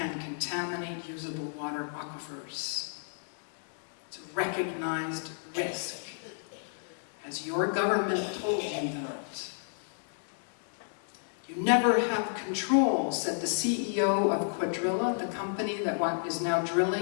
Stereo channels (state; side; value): silent; right; digital silence